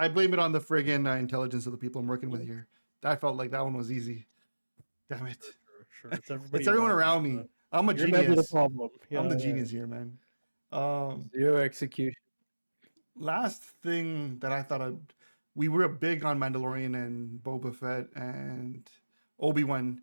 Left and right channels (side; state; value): both; inverted; correlation -1.00